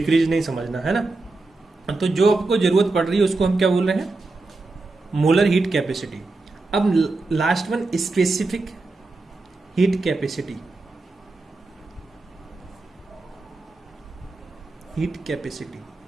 नहीं समझना, है ना। तो जो आपको जरूरत पड़ रही है उसको हम क्या बोल रहे हैं, मोलर हीट कैपेसिटी। अब last one specific heat capacity. Heat capacity,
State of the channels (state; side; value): quieter; left; 3.4 dB